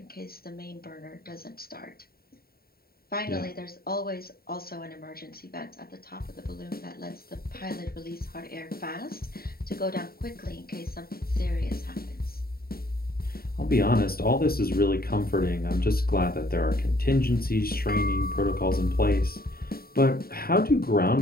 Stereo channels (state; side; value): late; right; 0.44 ms